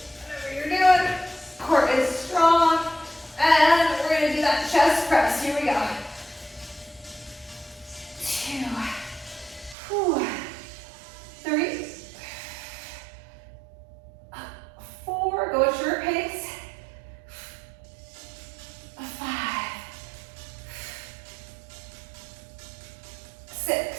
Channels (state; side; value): drops out; left; at 9.8 s